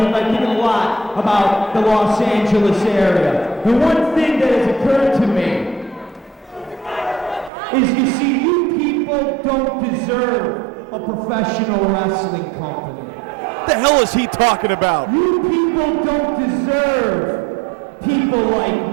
and I'm thinking a lot about the Los Angeles area. The one thing that has occurred to me is, you see, you people don't deserve a professional wrestling company. What the hell is he talking about? You people don't deserve people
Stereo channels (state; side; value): drops out; left; at 7.5 s